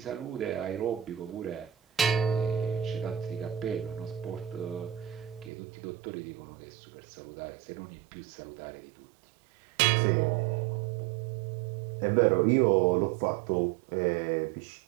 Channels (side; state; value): left; drops out; at 5.5 s